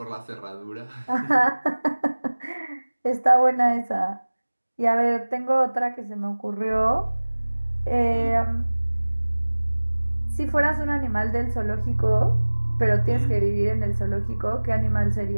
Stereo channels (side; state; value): both; inverted; correlation -1.00